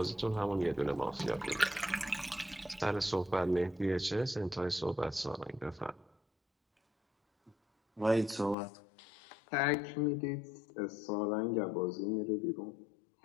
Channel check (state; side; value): drops out; right; at 8.6 s